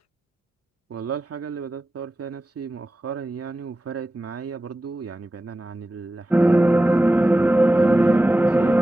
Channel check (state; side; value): normal; both; correlation 0.94